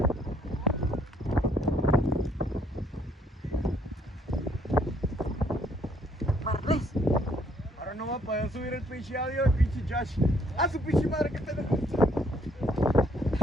Ahora no va a poder subir el pinche audio, el pinche Josh. A su pinche madre que tenemos.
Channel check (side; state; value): both; normal; correlation 0.66